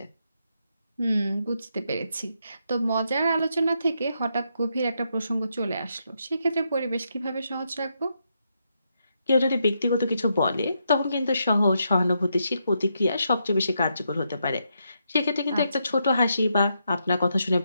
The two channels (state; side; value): inverted; both; correlation -0.80